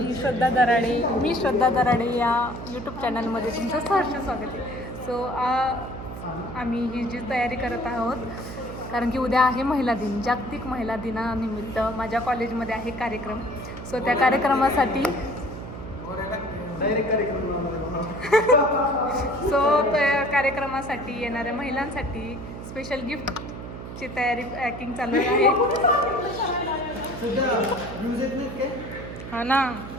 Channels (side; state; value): right; noise; hum, 10 dB below the sound